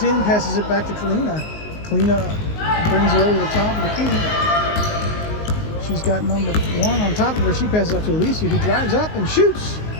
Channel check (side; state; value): right; late; 19 ms